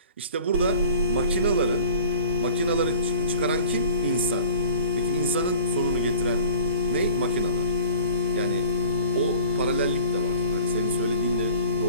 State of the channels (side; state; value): both; inverted; correlation -0.46